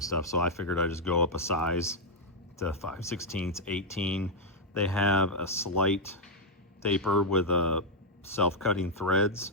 stuff, so I figured I'd just go up a size to 5/16, 18. They have a slight taper with a self-cutting threads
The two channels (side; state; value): both; normal; correlation -0.03